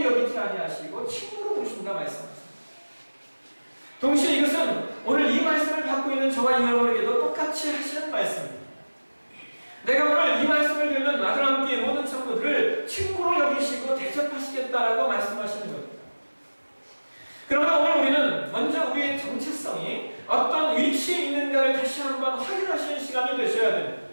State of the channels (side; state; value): both; inverted; correlation -1.00